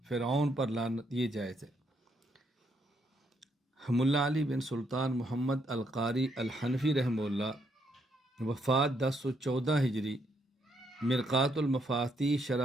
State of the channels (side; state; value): both; normal; correlation 0.74